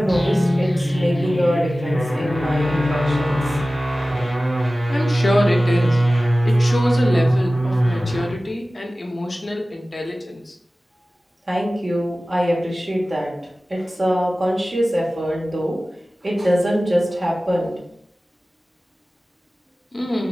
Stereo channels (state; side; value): normal; both; correlation 0.97